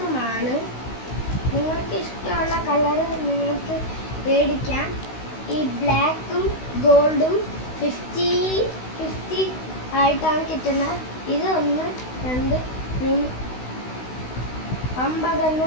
നിങ്ങൾക്ക് ഇഷ്ടമുള്ള കളർ നിങ്ങൾക്ക് മേടിക്കാം. ഈ ബ്ലാക്കും ഗോൾഡും 50-50 ആയിട്ടാണ് കിട്ടുന്നത്. ഇത് 1, 2, 3,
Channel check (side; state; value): right; late; 16 ms